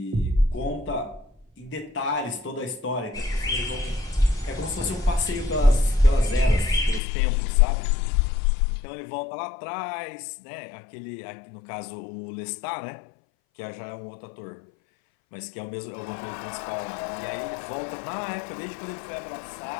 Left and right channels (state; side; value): drops out; right; at 7.0 s